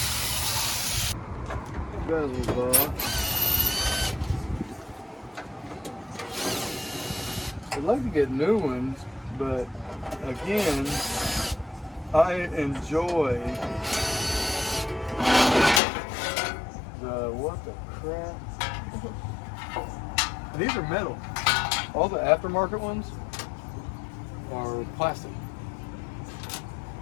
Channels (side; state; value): right; drops out; at 15.8 s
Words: Bezels off. I'd like to get new ones, but again, I enjoy the what the crap? And these are metal. All the aftermarket ones are plastic.